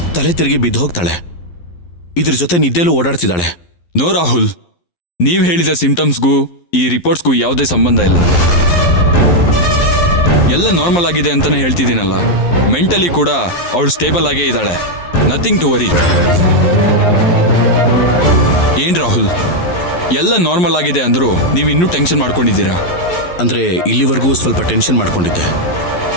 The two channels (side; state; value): right; late; 11 ms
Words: ತಲೆ ತಿರುಗಿ ಬಿದ್ದು ಹೋಗ್ತಾಳೆ. ಇದ್ರ ಜೊತೆ ನಿದ್ದೆಲೂ ಓಡಾಡ್ತಿದ್ದಾಳೆ. ನೋ ರಾಹುಲ್, ನೀವು ಹೇಳಿದ ಸಿಂಟಮ್ಸ್ಗೂ ಈ ರಿಪೋರ್ಟ್ಸ್ಗೂ ಯಾವುದೇ ಸಂಬಂಧ ಇಲ್ಲ. ಎಲ್ಲ ನಾರ್ಮಲ್ ಆಗಿದೆ ಅಂತಾನೆ ಹೇಳ್ತಿದ್ದೀನಲ್ಲ. ಮೆಂಟಲಿ ಕೂಡ ಅವಳು ಸ್ಟೇಬಲ್ ಆಗೇ ಇದ್ದಾಳೆ. Nothing to worry. ಏನ್ ರಾಹುಲ್, ಎಲ್ಲ ನಾರ್ಮಲ್ ಆಗಿದೆ ಅಂದ್ರೂ ನೀವು ಇನ್ನೂ ಟೆನ್ಷನ್ ಮಾಡ್ಕೊಂಡಿದ್ದೀರಾ? ಅಂದ್ರೆ ಇಲ್ಲಿವರೆಗೂ ಸ್ವಲ್ಪ ಟೆನ್ಷನ್ ಮಾಡ್ಕೊಂಡಿದ್ದೆ.